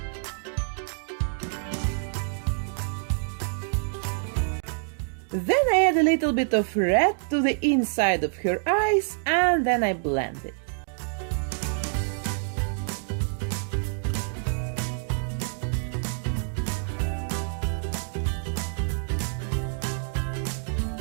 Then I add a little bit of red to the inside of her eyes and then I blend it.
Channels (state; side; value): silent; left; 60 dB below the other